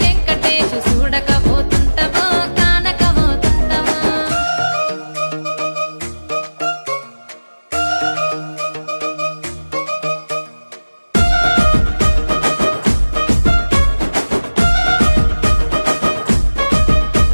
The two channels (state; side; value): inverted; both; correlation -1.00